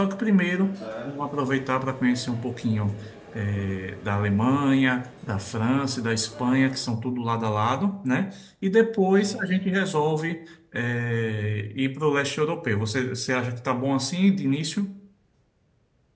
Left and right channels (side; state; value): both; identical; correlation 1.00